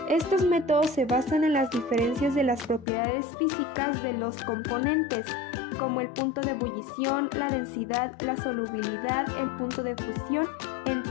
Estos métodos se basan en las diferencias de las propiedades físicas de los componentes, como el punto de ebullición, la densidad, la solubilidad, el punto de fusión,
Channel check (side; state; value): right; drops out; at 2.9 s